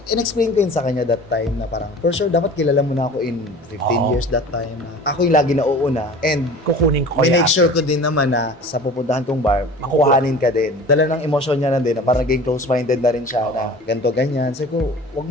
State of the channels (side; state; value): both; normal; correlation 0.41